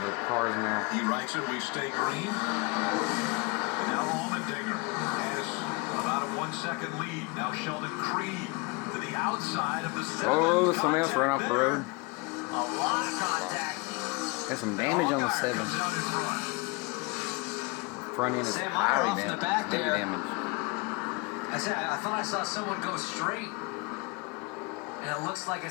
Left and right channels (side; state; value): right; quieter; 27.8 dB